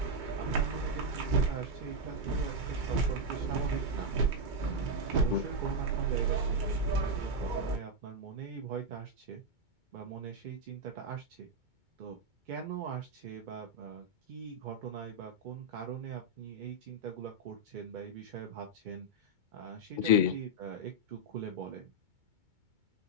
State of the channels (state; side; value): late; left; 2.2 ms